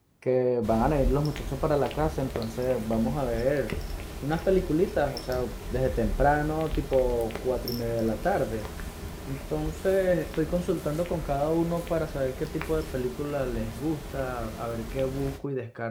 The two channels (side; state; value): both; identical; correlation 1.00